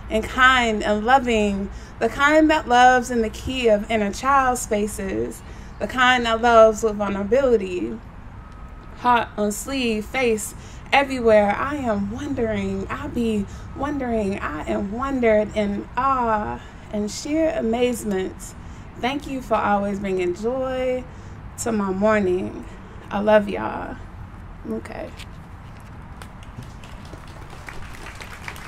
and kind and loving, the kind that loves in the key of inner child spaces, the kind that loves with vulnerability, heart on sleeve, face everywhere. I am wondering, I be wondering, I am wondered in awe and sheer amazement. Thank you for always bringing joy to my morning. I love y'all. Okay.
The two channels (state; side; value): identical; both; correlation 1.00